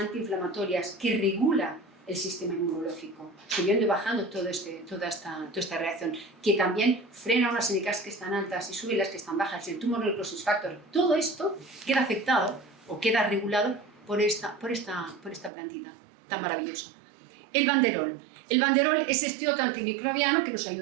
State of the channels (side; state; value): left; drops out; at 15.5 s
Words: que regula el sistema inmunológico, subiendo y bajando toda esta reacción, que también frena unas NKs que están altas y sube las que están bajas, el tumor necrosis factor. Todo esto queda afectado o queda regulado por esta plantita tan maravillosa. El banderol. El banderol es este otro antimicrobiano que nos